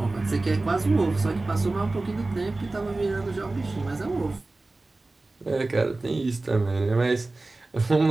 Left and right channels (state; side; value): quieter; left; 3.1 dB